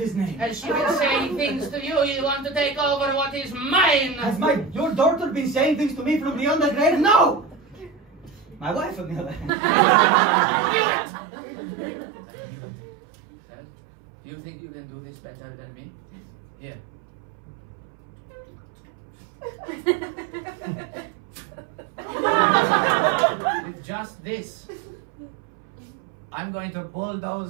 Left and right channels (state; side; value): drops out; left; at 9.5 s